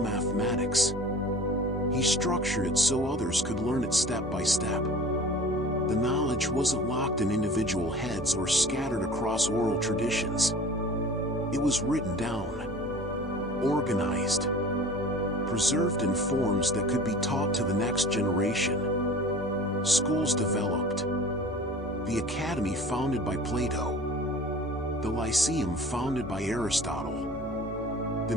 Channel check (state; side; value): normal; both; correlation 0.42